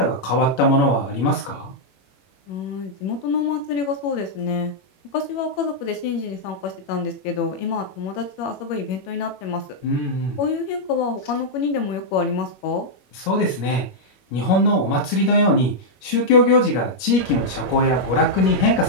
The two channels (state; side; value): late; right; 21 ms